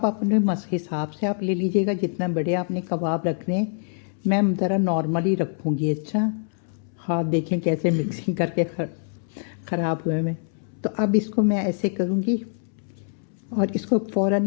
अपने हिसाब से आप ले लीजिएगा, जितना बड़े आपने कबाब रखने हैं। मैं ज़रा नॉर्मली रखूँगी। अच्छा, हाथ देखें कैसे मिक्सिंग करके ख़राब हुए में। तो अब इसको मैं ऐसे करूँगी, और इसको फ़ौरन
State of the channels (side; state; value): right; silent; 62 dB below the other